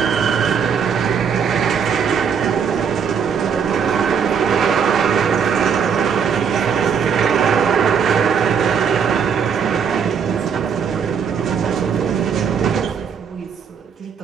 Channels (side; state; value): left; quieter; 6.9 dB